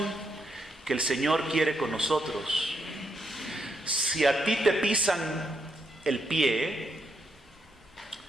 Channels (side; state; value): both; normal; correlation 0.79